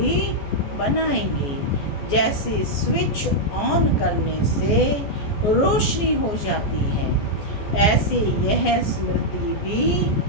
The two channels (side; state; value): right; late; 14 ms